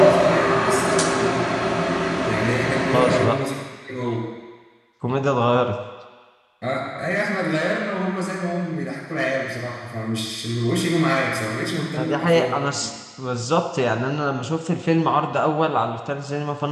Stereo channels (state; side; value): identical; both; correlation 1.00